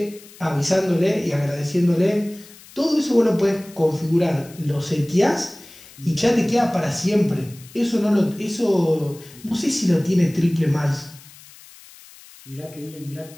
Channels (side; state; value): left; noise; hiss, 21 dB below the sound